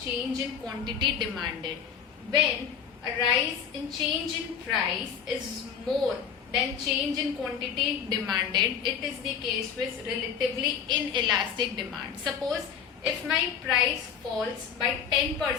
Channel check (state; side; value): quieter; right; 7.5 dB